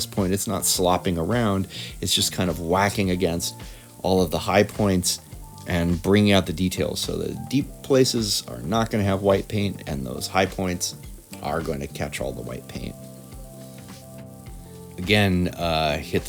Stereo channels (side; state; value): both; identical; correlation 1.00